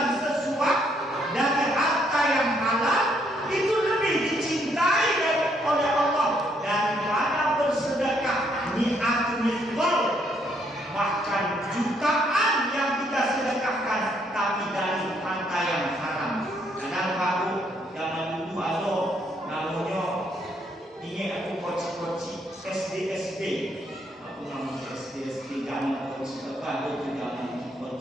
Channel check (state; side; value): normal; both; correlation 0.71